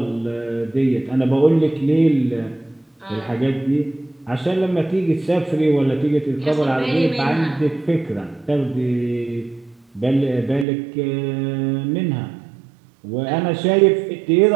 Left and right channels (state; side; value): drops out; left; at 10.7 s